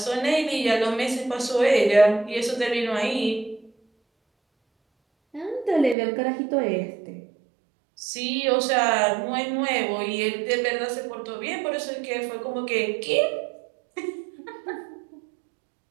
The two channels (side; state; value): left; drops out; at 6.0 s